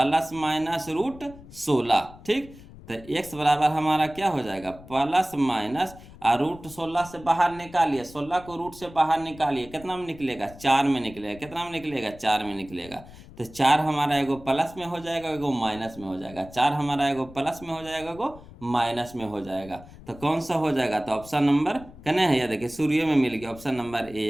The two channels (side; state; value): left; noise; rumble, 19 dB below the sound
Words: माइनस √16, ठीक। तो एक्स बराबर हमारा क्या हो जाएगा प्लस माइनस, और √16 से बाहर निकालिए, 16 को रूट से बाहर निकालिए, कितना में निकलेगा 4 में निकलेगा, कितना में निकलेगा 4 में निकलेगा। तो 4 हमारा एगो प्लस में हो जाएगा, एगो माइनस में हो जाएगा, 4 हमारा एगो प्लस में हो जाएगा, एगो माइनस में हो जाएगा। तो कौन सा हो जाएगा, तो ऑप्शन नंबर कने है, या देखिए सूर्य में मिल गया, ऑप्शन नंबर